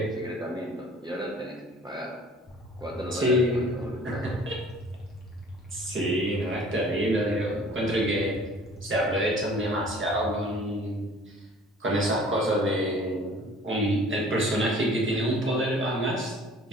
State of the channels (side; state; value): both; normal; correlation 0.50